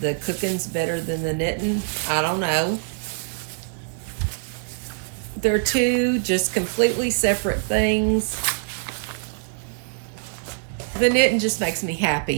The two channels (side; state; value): left; silent; digital silence